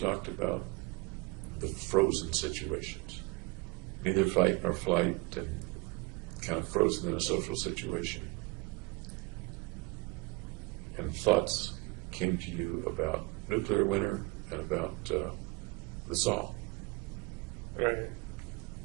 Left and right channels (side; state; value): left; quieter; 24.6 dB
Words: about the frozen situations, neither fight nor flight, and kind of frozen in a social situation. And thoughts came to you about nuclear winter and about the saw. Right.